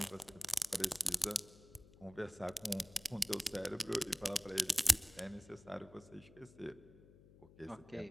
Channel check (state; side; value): noise; left; hum, 22 dB below the sound